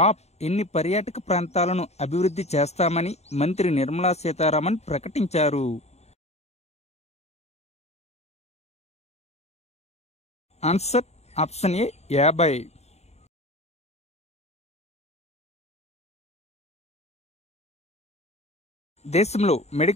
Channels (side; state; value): right; late; 0.31 ms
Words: ఎన్ని పర్యాటక ప్రాంతాలను అభివృద్ధి చేస్తామని మంత్రి నిర్మలా సీతారామన్ ప్రకటించారు? Answer option A 50. దేశంలో